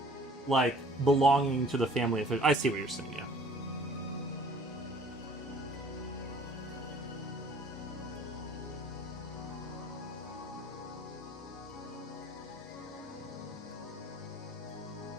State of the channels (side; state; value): both; normal; correlation 0.53